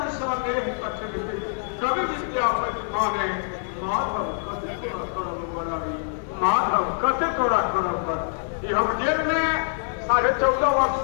सनेह कठिन थिक, कवि विद्यापति माने माधव कते तोरा करब बड़ाई, माधव कते तोरा करब पर। हम जेल में 14.5 वर्ष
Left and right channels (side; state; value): right; silent; digital silence